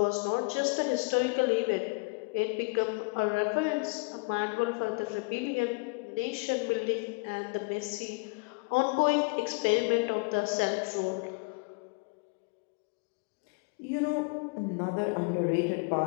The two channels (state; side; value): quieter; right; 30.1 dB